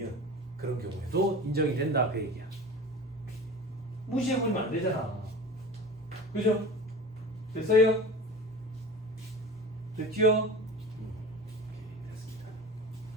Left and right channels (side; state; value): both; normal; correlation 0.35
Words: 그런 경우에도 인정이 된다 그 얘기야. 무시해버리면 안 되잖아. 그죠? 됐어요? 됐지요? 됐습니다.